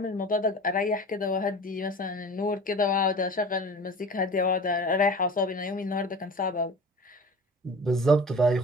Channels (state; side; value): normal; both; correlation 0.38